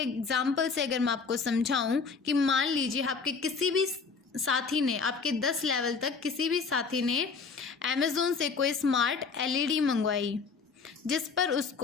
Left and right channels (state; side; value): quieter; right; 5.1 dB